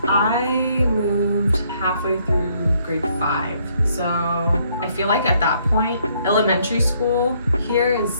I moved halfway through grade 5. So I feel like at that point, elementary school here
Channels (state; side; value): inverted; both; correlation -0.68